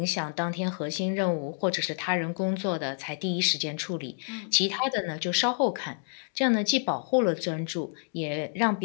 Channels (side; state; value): right; silent; digital silence